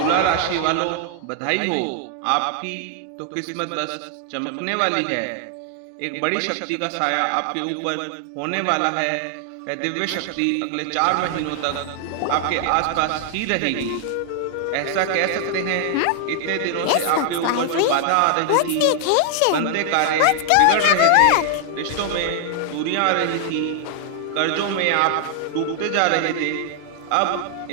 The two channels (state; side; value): different; both; correlation 0.00